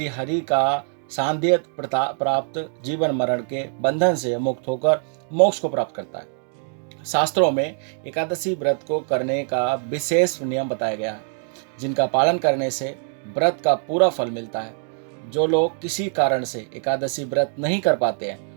हरि का सान्निध्य प्राप्त जीवन मरण के बंधन से मुक्त होकर मोक्ष को प्राप्त करता है। शास्त्रों में एकादशी व्रत को करने का विशेष नियम बताया गया है, जिनका पालन करने से व्रत का पूरा फल मिलता है। जो लोग किसी कारण से एकादशी व्रत नहीं कर पाते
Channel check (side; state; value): left; silent; 56 dB below the other